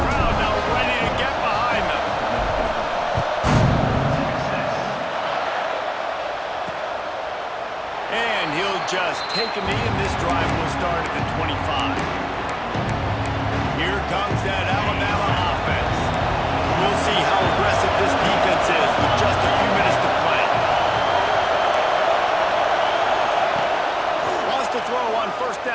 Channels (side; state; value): both; identical; correlation 1.00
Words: crowd now ready to get behind them. And he'll just take a knee, and this drive will start at the 25. Here comes that Alabama offense. We'll see how aggressive this defense is with just a few minutes to play. Wants to throw on 1st